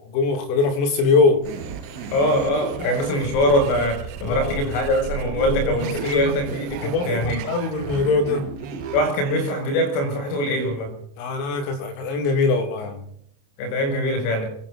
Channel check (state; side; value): late; right; 28 ms